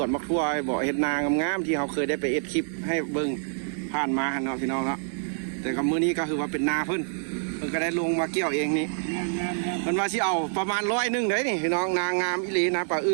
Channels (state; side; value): silent; left; digital silence